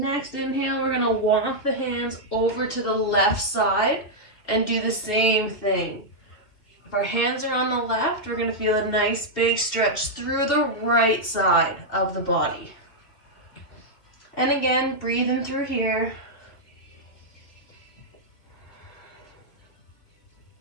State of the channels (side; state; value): right; late; 2.7 ms